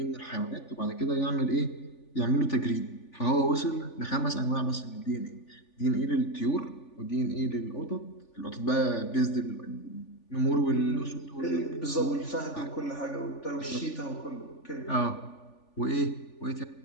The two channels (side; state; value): right; late; 3.4 ms